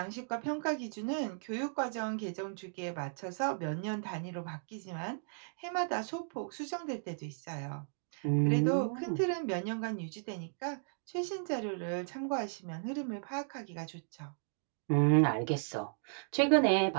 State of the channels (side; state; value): left; silent; digital silence